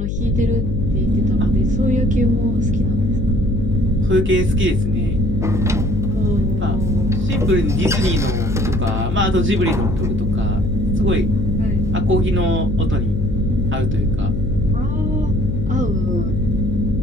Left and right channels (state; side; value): noise; left; hum, 2 dB below the sound